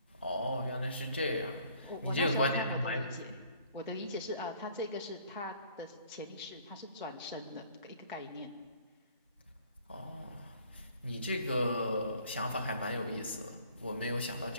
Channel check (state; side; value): inverted; both; correlation -0.57